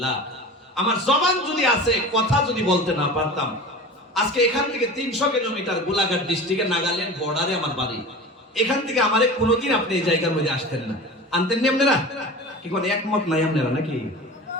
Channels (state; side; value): normal; both; correlation 0.34